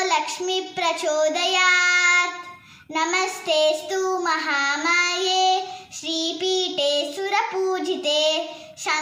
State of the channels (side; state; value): both; identical; correlation 1.00